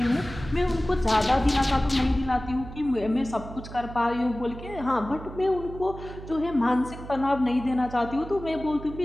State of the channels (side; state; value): right; noise; hum, 13 dB below the sound